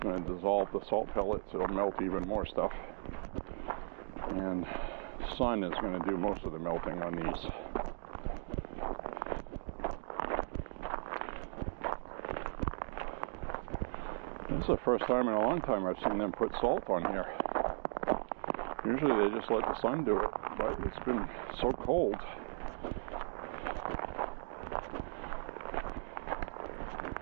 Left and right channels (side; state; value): left; silent; digital silence